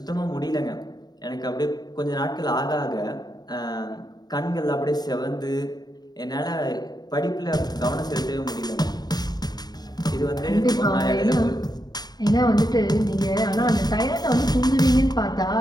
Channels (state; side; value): late; right; 0.20 ms